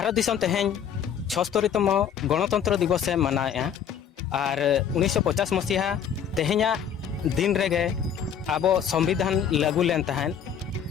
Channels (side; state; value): right; quieter; 8.4 dB